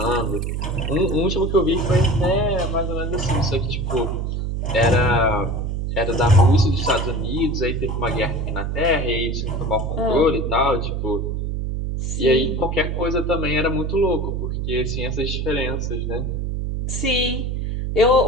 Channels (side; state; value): right; noise; hum, 2 dB below the sound